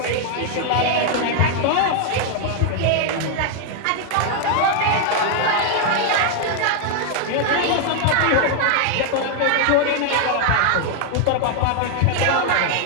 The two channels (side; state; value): both; different; correlation 0.00